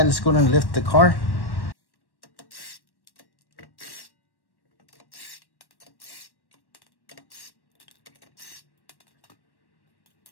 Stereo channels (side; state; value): right; late; 1.1 ms